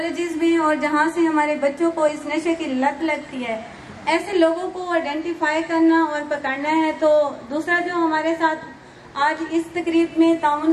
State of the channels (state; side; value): identical; both; correlation 1.00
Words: में, और जहां से हमारे बच्चों को इस नशे की लत लगती है, ऐसे लोगों को आइडेंटिफाई करना और पकड़ना है। तो दूसरा जो हमारे साथ आज इस तकरीब में